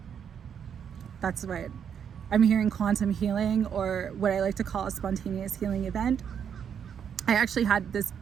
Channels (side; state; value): left; quieter; 7.9 dB